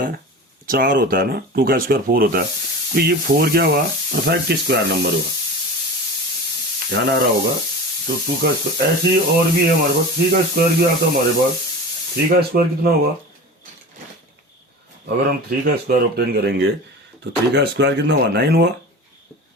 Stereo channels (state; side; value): normal; both; correlation 0.33